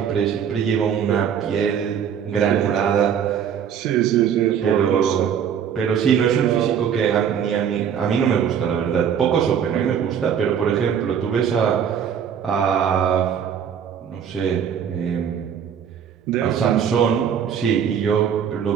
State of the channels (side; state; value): left; quieter; 8.2 dB